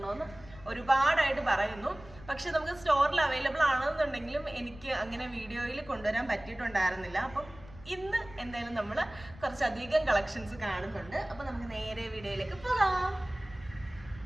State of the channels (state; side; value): noise; left; rumble, 19 dB below the sound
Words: ഒരുപാടായിട്ട് പറയുന്നു. പക്ഷെ നമുക്ക് സ്റ്റോറിൽ അവൈലബിൾ ആണെന്നുണ്ടെങ്കിലും എനിക്ക് അങ്ങനെ വീഡിയോയിൽ കൊണ്ടുവരാൻ പറ്റിയിട്ടുണ്ടായിരുന്നില്ല. അപ്പം ഇന്ന് എന്തായാലും നമ്മൾ കുറച്ചധികം കളക്ഷൻസ് കാണുന്നുണ്ട്. അപ്പൊ നമുക്ക് നേരെ വീഡിയോയിലേക്ക് പോകാം.